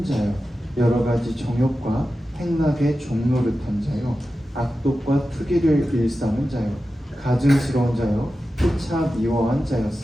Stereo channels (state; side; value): normal; both; correlation 0.93